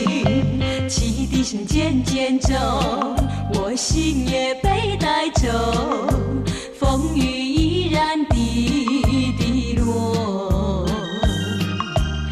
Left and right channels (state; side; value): identical; both; correlation 1.00